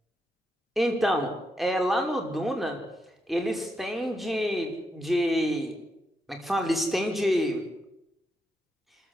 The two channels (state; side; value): normal; both; correlation 0.83